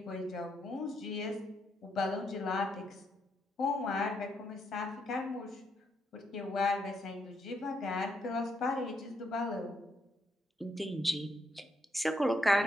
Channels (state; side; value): normal; both; correlation 0.77